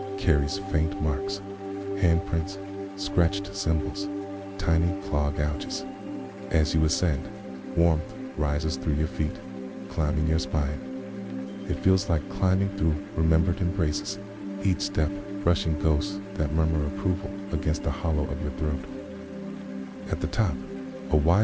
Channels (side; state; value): both; identical; correlation 1.00